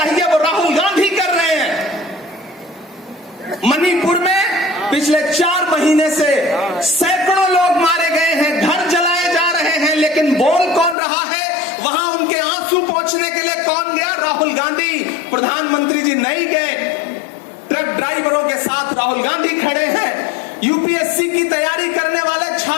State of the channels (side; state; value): right; drops out; at 11.0 s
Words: वो राहुल गांधी कर रहे हैं। मणिपुर में पिछले 4 महीने से सैकड़ों लोग मारे गए हैं, घर जलाए जा रहे हैं, लेकिन बोल कौन रहा है? वहां उनके आंसू पोंछने के लिए कौन गया? राहुल गांधी। प्रधानमंत्री जी नहीं गए। ट्रक ड्राइवरों के साथ राहुल गांधी खड़े हैं। यूपीएससी की तैयारी करने वाले